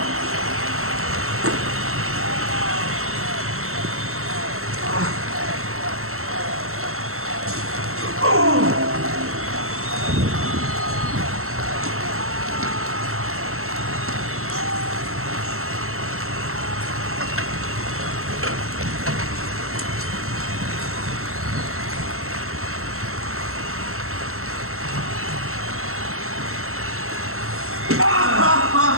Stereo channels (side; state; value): left; late; 0.63 ms